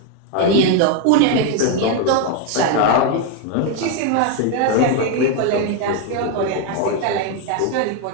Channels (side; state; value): both; different; correlation 0.01